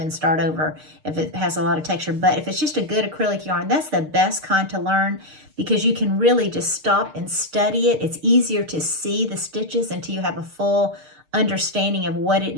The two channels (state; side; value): late; left; 6.5 ms